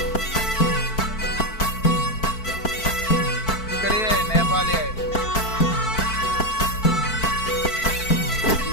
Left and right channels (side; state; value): right; late; 4.5 ms